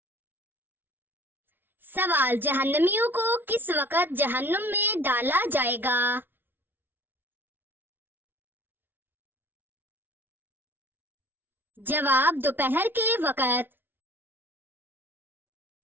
سوال، جہنمیوں کو کس وقت جہنم میں ڈالا جائے گا؟ جواب، دوپہر کے وقت۔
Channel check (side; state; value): left; late; 0.10 ms